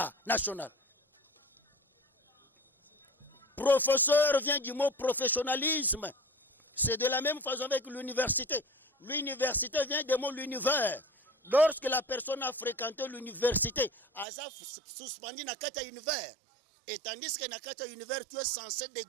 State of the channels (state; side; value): drops out; left; at 14.2 s